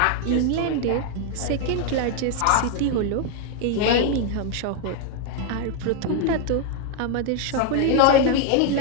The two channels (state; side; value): different; both; correlation 0.01